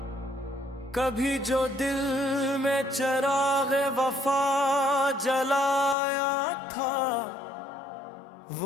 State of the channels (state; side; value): drops out; right; at 6.0 s